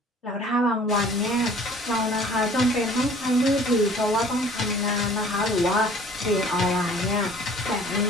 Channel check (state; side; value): normal; both; correlation 0.51